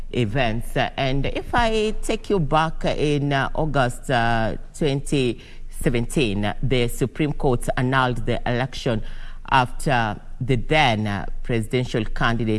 events. And if I take you back in August 2017, the Supreme Court annulled the election after the then presidential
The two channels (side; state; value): both; identical; correlation 1.00